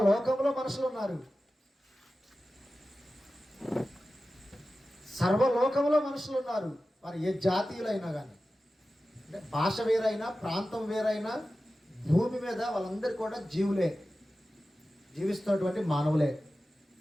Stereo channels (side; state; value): both; normal; correlation 0.94